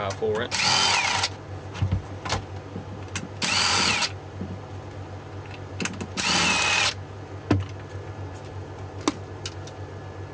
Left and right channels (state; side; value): identical; both; correlation 1.00